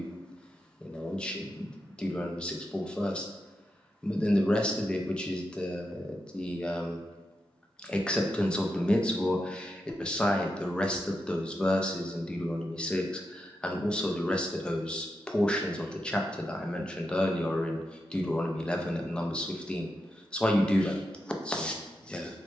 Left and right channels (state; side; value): normal; both; correlation 0.86